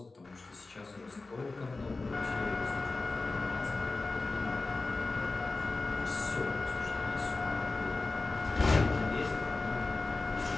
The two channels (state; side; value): quieter; right; 3.5 dB